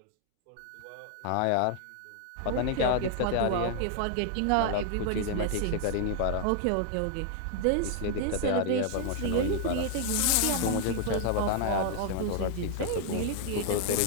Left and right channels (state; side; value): different; both; correlation 0.00